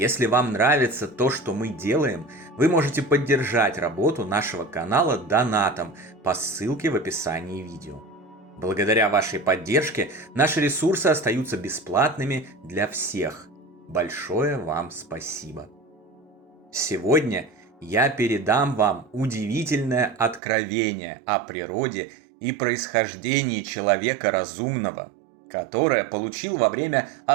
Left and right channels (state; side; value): drops out; left; at 20.4 s